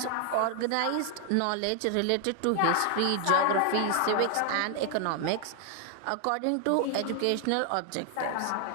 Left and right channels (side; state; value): both; different; correlation 0.00